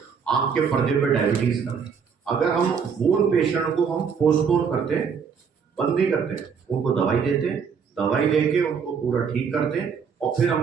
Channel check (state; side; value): quieter; left; 6.4 dB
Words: आंख के पर्दे पे डायबिटीज का, अगर हम वो पेशेंट को हम पोस्टपोन करते हैं, बंद नहीं करते, उनको दवाई देते हैं, दवाई देके उनको पूरा ठीक करते हैं और फिर